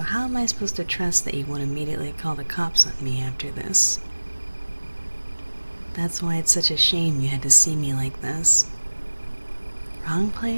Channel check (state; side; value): inverted; both; correlation -1.00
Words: how am I supposed to trust that you won't immediately call the cops on me after this? That's why it's such a shame you had to see me like this. Wrong